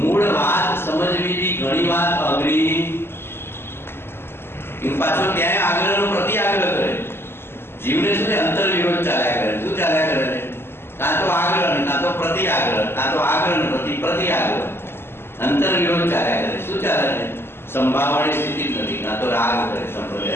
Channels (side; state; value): right; late; 0.11 ms